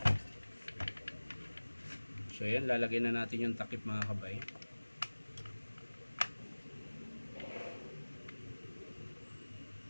So yan, lalagay na natin yung takip mga kabay.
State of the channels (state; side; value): inverted; both; correlation -1.00